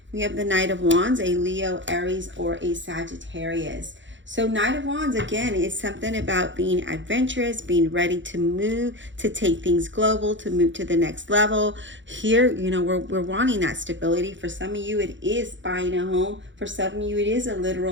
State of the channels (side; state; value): left; late; 0.54 ms